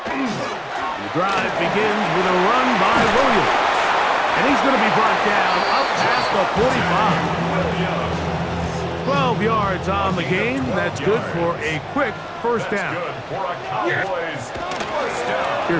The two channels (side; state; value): both; identical; correlation 1.00